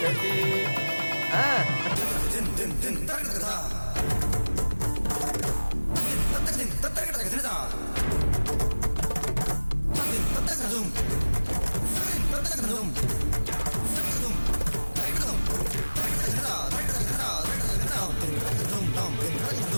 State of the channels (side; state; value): both; inverted; correlation -1.00